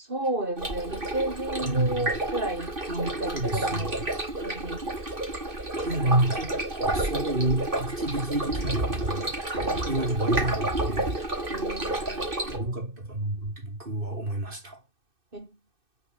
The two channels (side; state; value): left; late; 2.6 ms